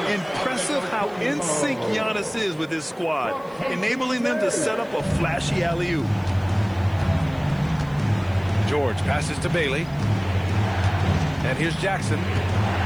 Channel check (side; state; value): right; noise; hiss, 29 dB below the sound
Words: Impressive how in sync Giannis is with his squad, enabling them to set up a flashy alley-oop. George passes to Bailey. And here's Jackson